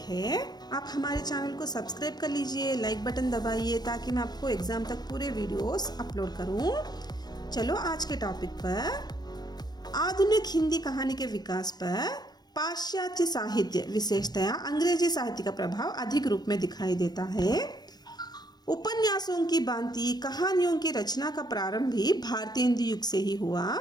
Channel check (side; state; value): right; late; 0.20 ms